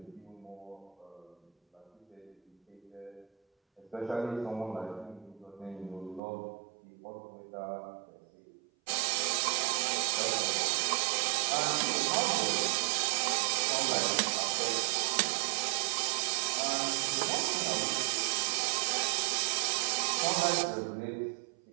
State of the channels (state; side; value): drops out; left; at 6.2 s